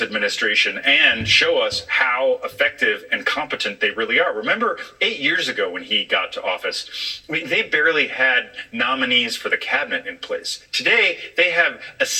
and show us how effective and competent they really are. Remember 8 years ago when he got to office, they barely had nominees for the cabinet in place. Today, they have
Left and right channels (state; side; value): identical; both; correlation 1.00